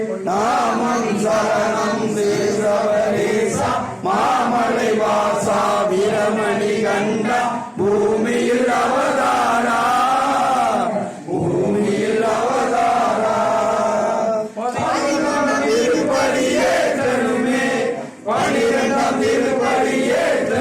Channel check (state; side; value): identical; both; correlation 1.00